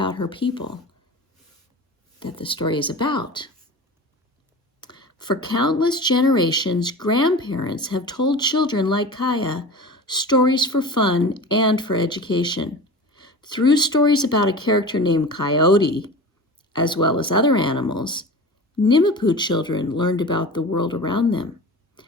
her people that the story is about. For countless generations, grandparents have told children like Kaya stories for fun and for education. Through stories about a character named Coyote, as well as other animals, Nimapoo children learned about the world around them,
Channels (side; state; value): both; normal; correlation 0.34